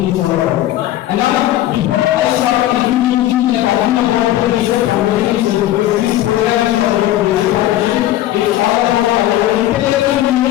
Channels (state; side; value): quieter; right; 14.0 dB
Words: is all about. And now, before I start introducing and talking about the research foundations, this program is all about research foundation. It's all about our intellectual